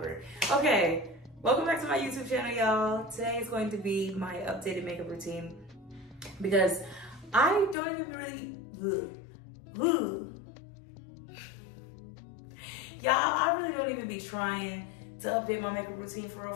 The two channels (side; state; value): right; drops out; at 7.8 s